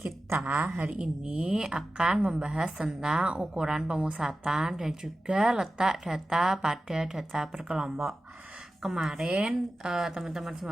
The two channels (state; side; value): normal; both; correlation 0.94